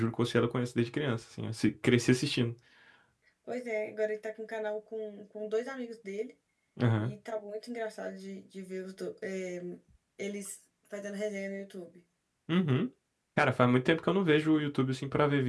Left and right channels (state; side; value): identical; both; correlation 1.00